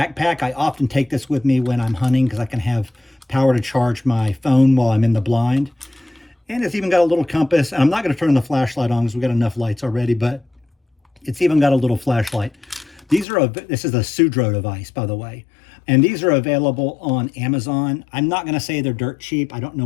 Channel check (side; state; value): right; drops out; at 13.2 s